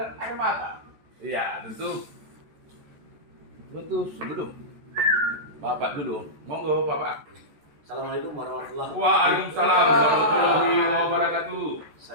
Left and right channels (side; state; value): left; late; 14 ms